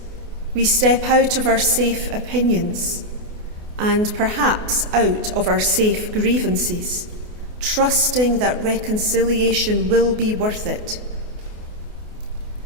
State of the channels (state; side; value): late; left; 28 ms